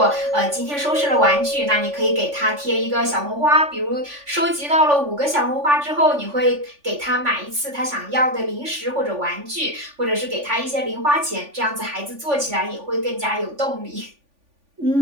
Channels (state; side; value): late; left; 3.5 ms